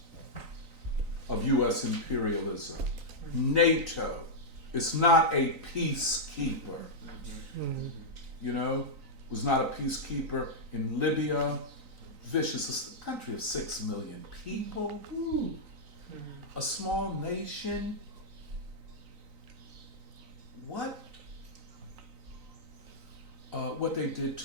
of U.S. imperialism, NATO. It's not a peacekeeper. You know, was not a peacekeeper in Libya. Vicious, a country of 6 million people. Ooh. A small nation. What they did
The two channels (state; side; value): late; left; 3.9 ms